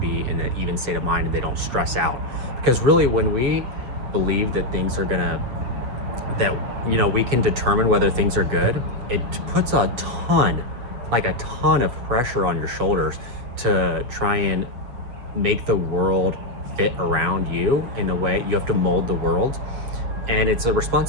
in an even state of mind, and they don't stress out. Because really, when we believe that things are gonna, that we can determine whether things are good, it puts a ton of pressure on your shoulders to try and make the world fit around you in a way. You have to mold the world, and it's a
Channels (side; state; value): left; late; 8.2 ms